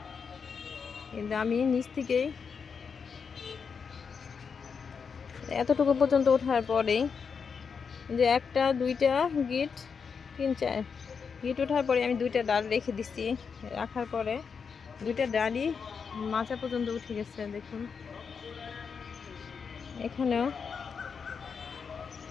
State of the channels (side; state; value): right; quieter; 6.0 dB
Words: কিন্তু আমি নিচ থেকেই এতটুকু পর্যন্ত ওঠার পরেই যে 1টা 2টা গিট 3 4 গিট ওঠার পরে আমি 2টা ডাল রেখে দিচ্ছি। রাখার পরে 2টা ডালই মাচা পর্যন্ত উঠে গেছে। দেখুন এখানেও